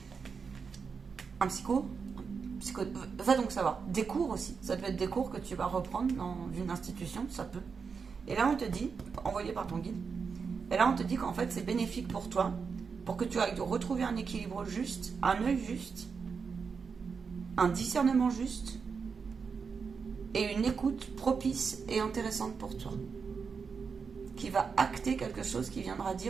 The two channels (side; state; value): left; quieter; 5.6 dB